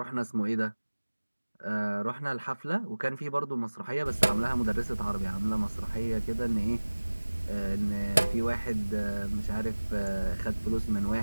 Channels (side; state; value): both; inverted; correlation -1.00